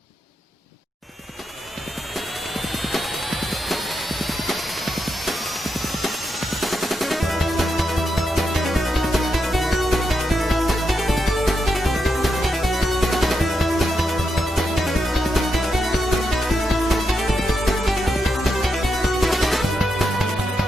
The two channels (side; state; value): both; normal; correlation 0.84